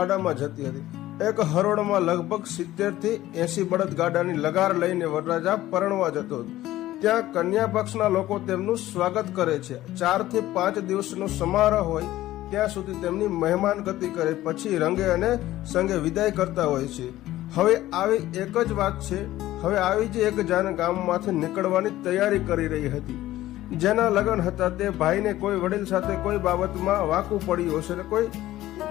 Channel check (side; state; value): right; quieter; 15.1 dB